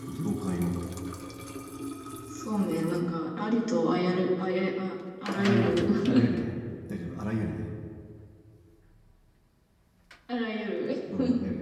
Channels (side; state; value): both; identical; correlation 1.00